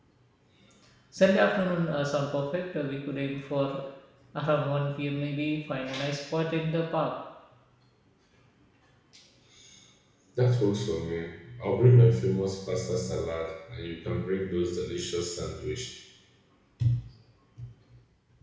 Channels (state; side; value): identical; both; correlation 1.00